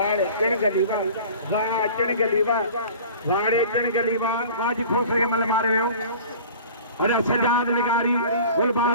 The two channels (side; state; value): both; inverted; correlation -0.43